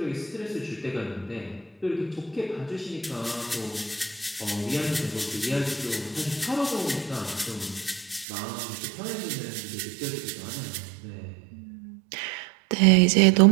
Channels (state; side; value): drops out; left; at 8.2 s